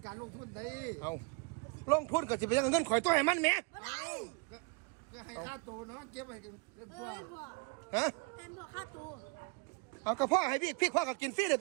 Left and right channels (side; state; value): left; quieter; 29.1 dB